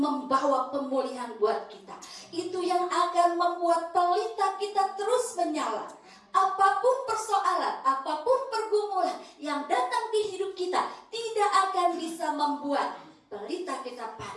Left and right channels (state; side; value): identical; both; correlation 1.00